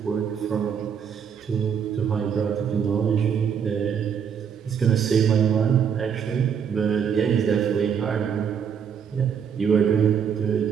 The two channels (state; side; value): quieter; left; 7.4 dB